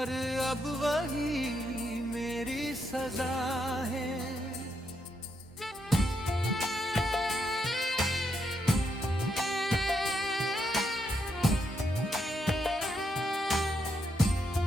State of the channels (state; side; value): normal; both; correlation 0.79